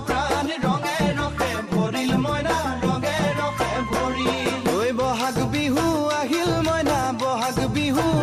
প্ৰাণ ৰঙে ৰখে ভৰিল মইনা ৰঙে ৰখে ভৰিল ঐ বহাগ বিহু আহিল মইনা বহাগ বিহু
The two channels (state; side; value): identical; both; correlation 1.00